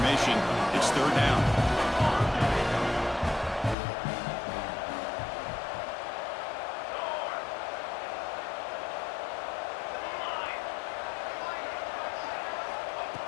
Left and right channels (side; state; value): right; drops out; at 3.8 s